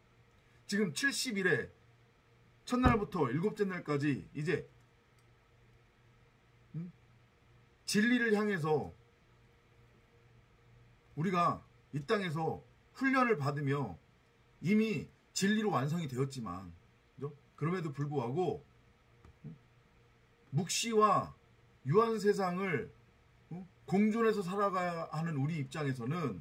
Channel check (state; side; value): identical; both; correlation 1.00